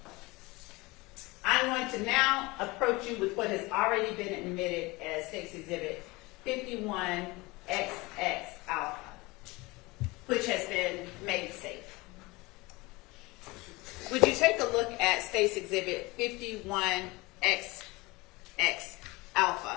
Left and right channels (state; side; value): quieter; right; 23.0 dB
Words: I'm going to now approach you with what has already been admitted as State's Exhibit 51XX Alpha, which has been made safe. Would you take a look at State's Exhibit 51XX